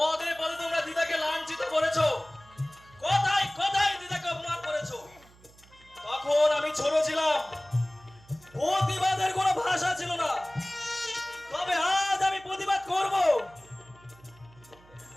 পদে তোমরা দিদাকে লাঞ্ছিত করেছো, কথায় কথায় দিদাকে অপমান করেছো। তখন আমি ছোট ছিলাম, প্রতিবাদের কোনো ভাষা ছিল না। তবে আজ আমি প্রতিবাদ করব।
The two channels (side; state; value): right; noise; hum, 26 dB below the sound